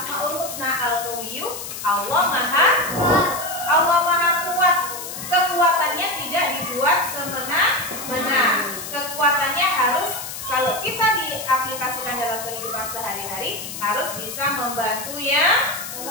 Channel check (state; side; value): noise; left; hiss, 9 dB below the sound